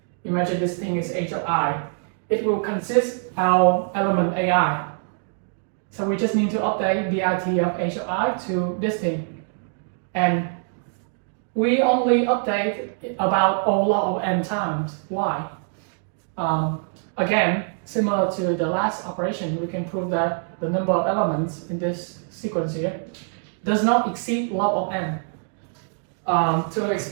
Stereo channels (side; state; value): left; silent; 62 dB below the other